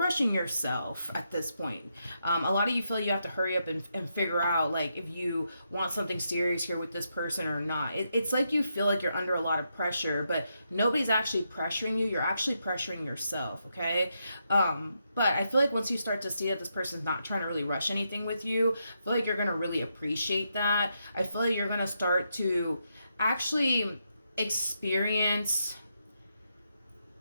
yourself at this point. A lot of you feel you have to hurry up and figure out, like, if you want something serious here with this person or not. It's like you feel like you're under a lot of pressure, but nobody's actually pressuring you. You're actually pressuring yourself, okay? But I feel like once you start to see that this person's not trying to really rush anything with you, I feel like you're going to really appreciate that. I feel like you're going to start to actually experience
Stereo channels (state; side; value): inverted; both; correlation -0.82